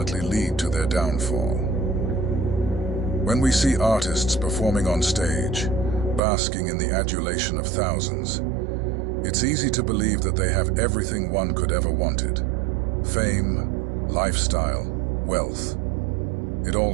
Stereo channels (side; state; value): left; drops out; at 6.2 s